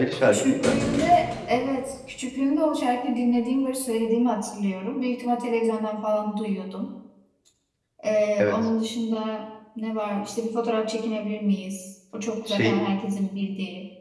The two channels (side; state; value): both; identical; correlation 1.00